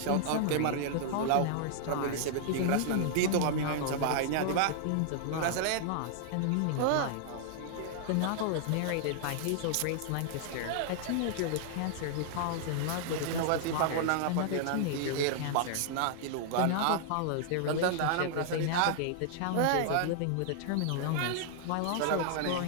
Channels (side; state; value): both; different; correlation -0.01